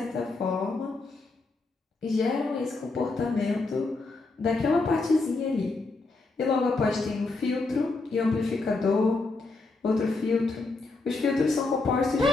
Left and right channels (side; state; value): right; quieter; 3.5 dB